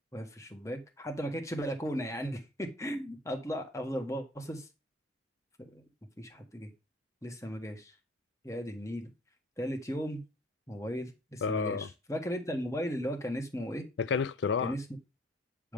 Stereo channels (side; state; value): both; normal; correlation 0.53